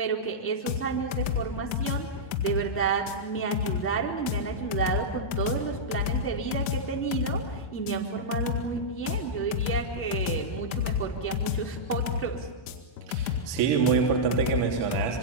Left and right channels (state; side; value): late; right; 1.6 ms